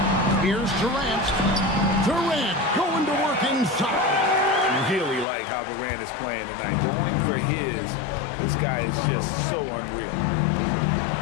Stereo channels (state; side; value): drops out; right; at 5.2 s